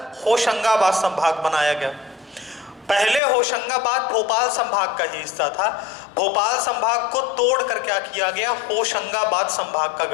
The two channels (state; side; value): drops out; right; at 3.2 s